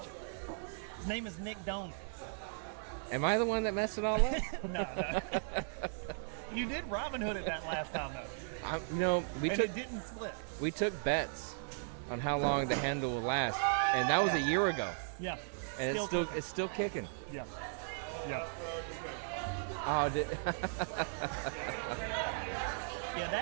His name is Nick Doan. Am I the one that messed it all up? No. You did Robin Hood at that last time though. It didn't split. We took bets on how long the handle will last, and that was a year ago. Yeah, and it's still kicking. Yeah. Oh, yeah.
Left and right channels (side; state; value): left; silent; digital silence